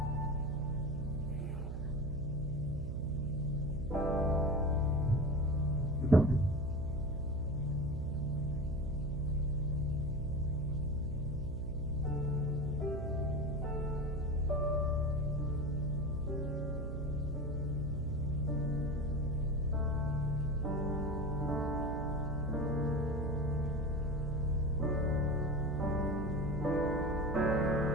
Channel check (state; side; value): noise; right; hum, 4 dB below the sound